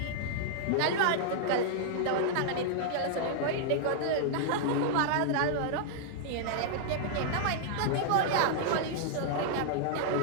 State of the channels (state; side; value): different; both; correlation -0.01